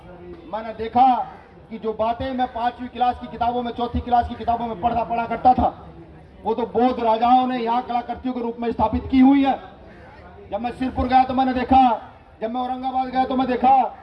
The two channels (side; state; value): both; identical; correlation 1.00